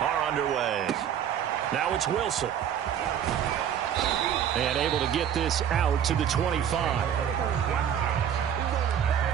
are underway. Now it's Wilson. And able to get this out to the 25.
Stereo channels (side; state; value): left; quieter; 9.2 dB